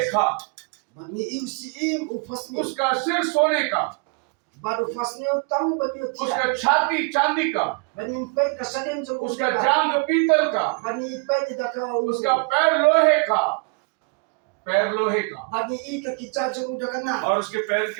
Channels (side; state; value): left; quieter; 35.6 dB